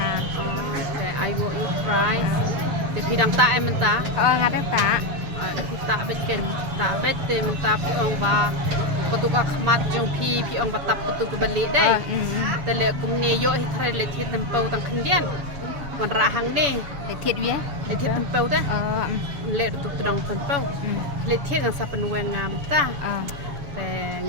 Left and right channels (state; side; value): late; left; 7.0 ms